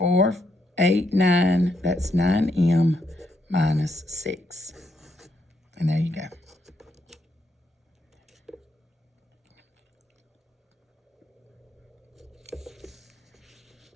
8, 9, that's 9m minus 6. And there you go.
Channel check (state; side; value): normal; both; correlation 0.77